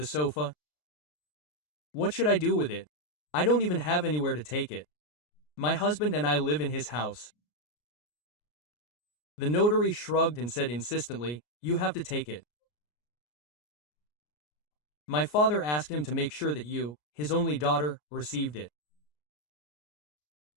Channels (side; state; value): right; late; 33 ms